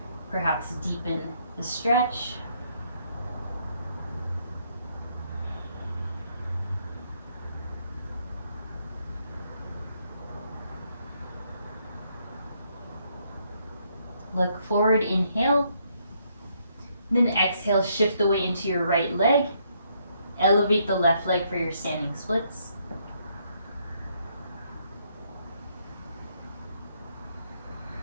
perhaps deepen the stretch. Look forward, inhale. Then exhale, shift the weight into your right leg. Elevate the left leg for your standing splits.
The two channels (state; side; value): inverted; both; correlation -0.72